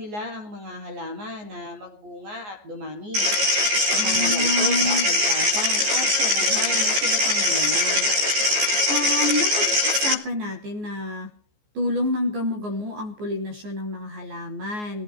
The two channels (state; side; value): late; left; 14 ms